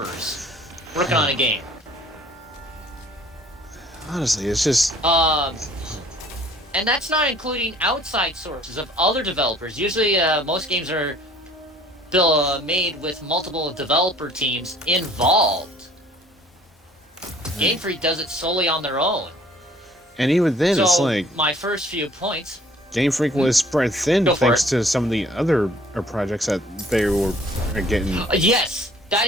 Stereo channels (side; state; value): both; normal; correlation 0.54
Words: working on a game. Honestly, it's just And that's not including outside sources of other developers. Usually, most games are made with multiple developer teams involved. Game Freak does it solely on their own. and even then, So it's like my first few points. Game Freak was spread thin Go for thanks it. to some of the other projects that they were getting. Yes, that